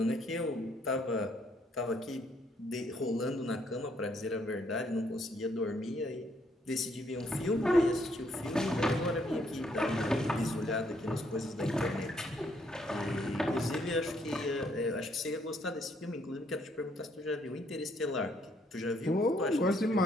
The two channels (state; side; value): normal; both; correlation 0.70